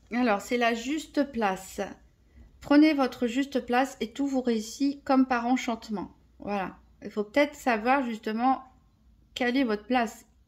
Alors, c'est la juste place. Prenez votre juste place et tout vous réussit comme par enchantement. Voilà. Il faut peut-être savoir justement quelle est votre place.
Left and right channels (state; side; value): identical; both; correlation 1.00